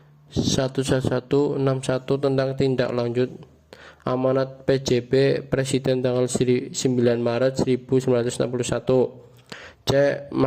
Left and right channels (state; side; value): identical; both; correlation 1.00